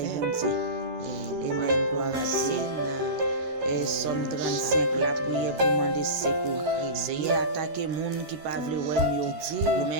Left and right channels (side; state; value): left; late; 12 ms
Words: Dieu. Amen. Gloire à Dieu. Et Somme 35 la prière pour demander secours. C'est attaquer moun qui pas vle wè yo. Ou mais